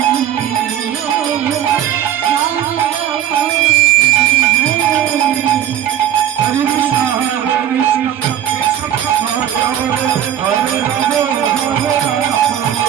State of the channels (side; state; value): left; quieter; 10.6 dB